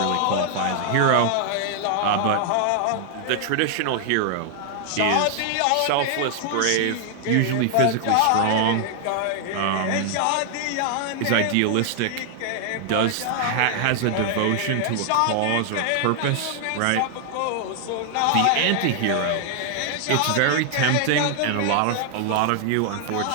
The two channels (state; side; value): different; both; correlation 0.00